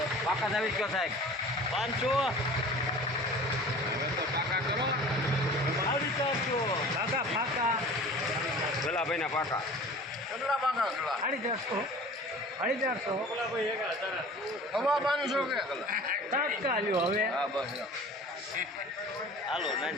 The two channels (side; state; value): both; normal; correlation 0.42